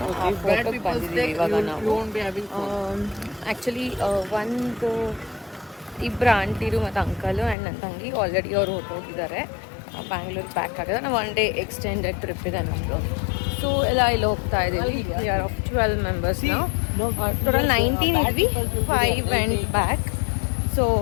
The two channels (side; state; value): right; drops out; at 7.6 s